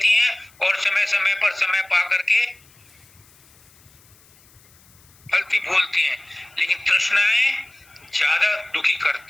हैं और समय समय पर समय पा करके फलती फूलती हैं, लेकिन तृष्णाएं ज्यादा दुखी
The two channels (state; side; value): noise; left; hiss, 28 dB below the sound